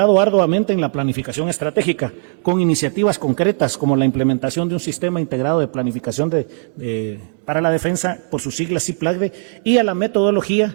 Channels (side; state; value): left; silent; digital silence